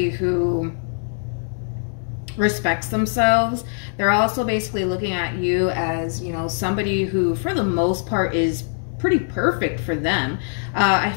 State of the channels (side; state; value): right; silent; digital silence